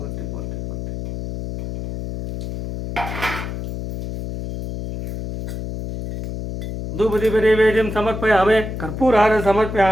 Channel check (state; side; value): noise; left; hum, 6 dB below the sound